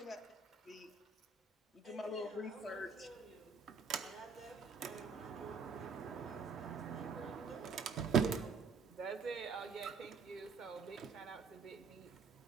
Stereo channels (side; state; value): left; quieter; 5.0 dB